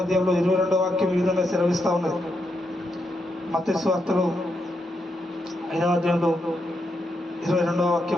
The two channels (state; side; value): normal; both; correlation 0.82